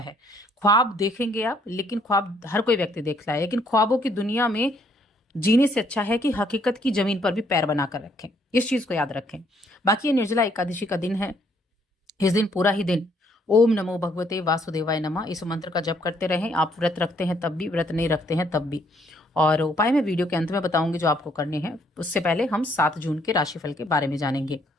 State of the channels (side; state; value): both; normal; correlation 0.67